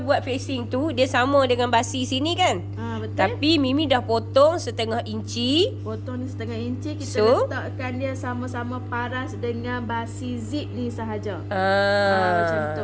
facing tu dia sama dengan basi sini kan? Betul. Tapi Mimi dah potong setengah inci. Potong ni setengah inci, kita letakkan dia sama-sama paras dengan basi zip ni sahaja. Macam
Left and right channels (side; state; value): both; identical; correlation 1.00